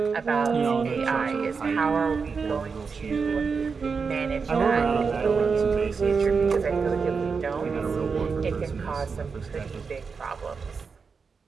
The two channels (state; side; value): quieter; left; 5.3 dB